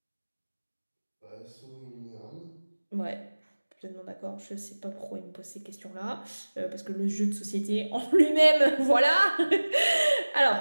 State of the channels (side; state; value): both; inverted; correlation -1.00